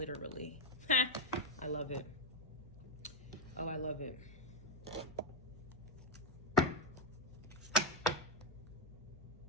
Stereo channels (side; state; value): both; normal; correlation 0.04